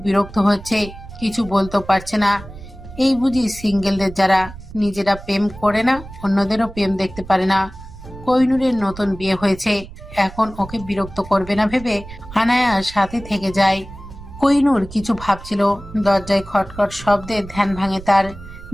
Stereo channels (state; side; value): noise; right; rumble, 15 dB below the sound